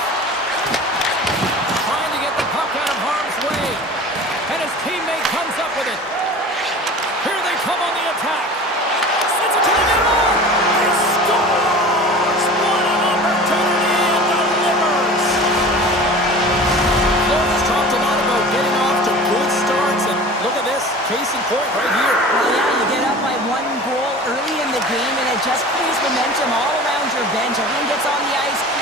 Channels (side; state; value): both; normal; correlation 0.39